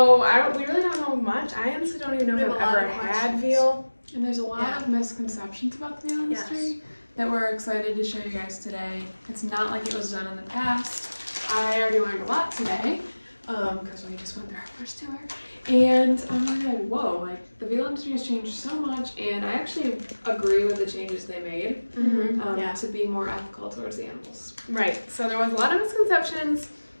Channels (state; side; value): inverted; both; correlation -1.00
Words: we really don't know much. I honestly don't even know if I've ever had veal. And there's a lot of misconceptions about the veal industry that we're excited to show you guys today. It's not like it was done in the past. I already learned a lot today because we just went through our first tour. And I'm like, whoa, like the veal industry has changed so much, and I actually agree with the changes they made to be more ethical towards the animals. Right, so there was a lot of misconceptions,